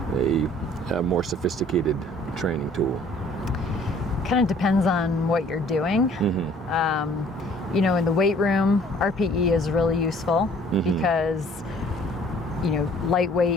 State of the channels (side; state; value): both; normal; correlation 0.56